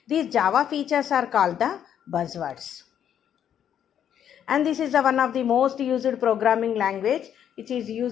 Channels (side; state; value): right; quieter; 9.4 dB